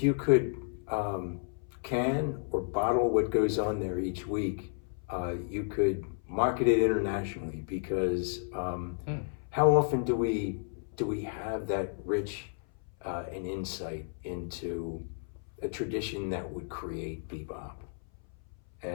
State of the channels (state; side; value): silent; right; 56 dB below the other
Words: can or bottle what goes on there each week, you could market it internationally because how often do we have that rich an insight into a tradition that would create bebop